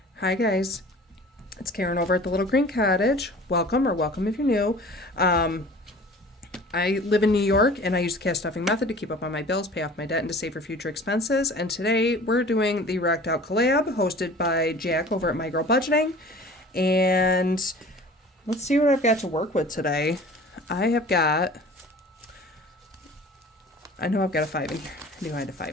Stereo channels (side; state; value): both; normal; correlation 0.44